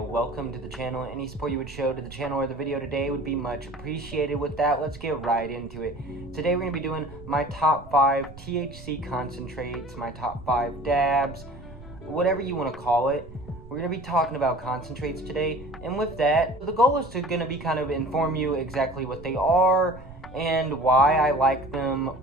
to the channel. Any support you would show to the channel or the video today would be much appreciated. With that, let's get right into it. Today we're going to be doing my top 5 THC concentrates, my top 5 dabs, whatever you want to call it. We're going to be talking about concentrates today, and with that, the goal is to going to be kind of inform you exactly what they are and why I like them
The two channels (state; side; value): noise; right; rumble, 18 dB below the sound